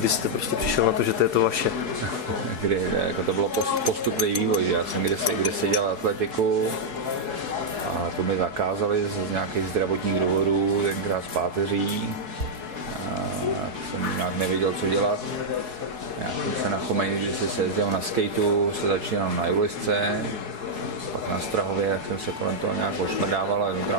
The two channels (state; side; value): late; left; 4.7 ms